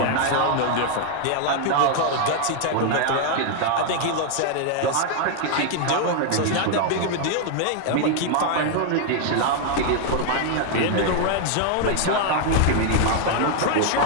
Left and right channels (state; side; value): different; both; correlation 0.00